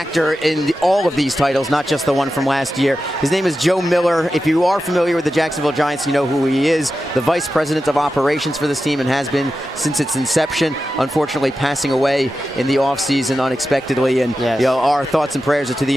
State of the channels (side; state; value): both; normal; correlation 0.91